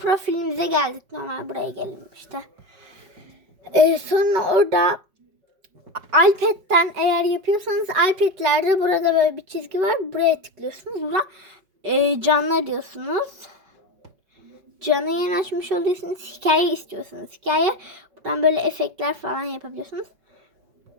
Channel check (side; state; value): left; late; 5.3 ms